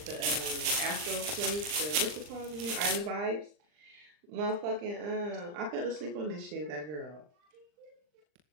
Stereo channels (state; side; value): late; left; 39 ms